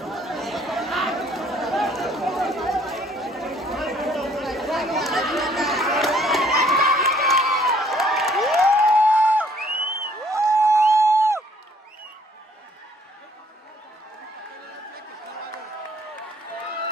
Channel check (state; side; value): normal; both; correlation 0.62